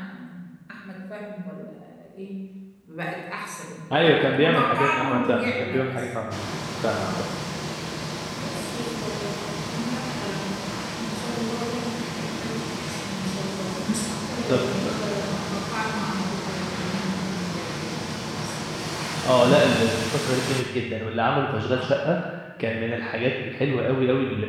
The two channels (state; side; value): identical; both; correlation 1.00